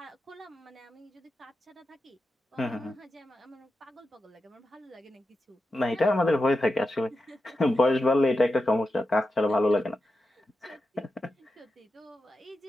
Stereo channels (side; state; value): both; normal; correlation 0.90